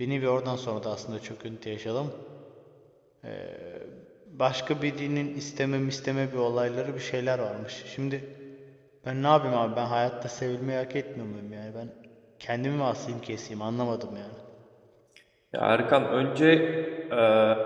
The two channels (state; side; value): identical; both; correlation 1.00